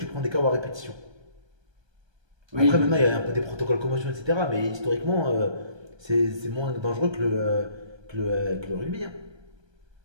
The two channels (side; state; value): left; late; 1.3 ms